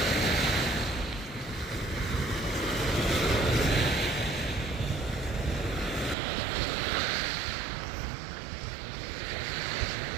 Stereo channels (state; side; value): drops out; left; at 6.2 s